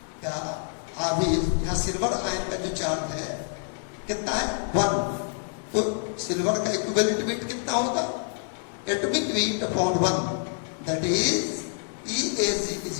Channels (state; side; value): silent; right; 60 dB below the other